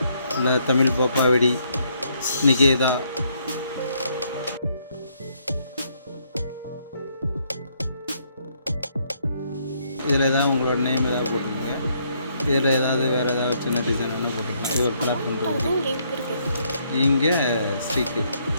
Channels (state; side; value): inverted; both; correlation -0.71